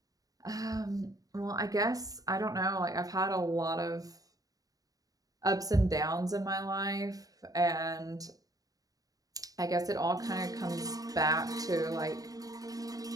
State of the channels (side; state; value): left; late; 0.18 ms